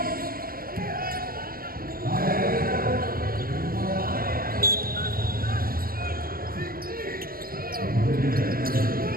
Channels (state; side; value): late; left; 0.43 ms